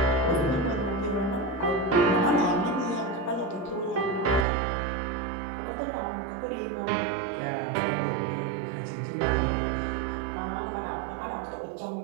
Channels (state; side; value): drops out; left; at 4.5 s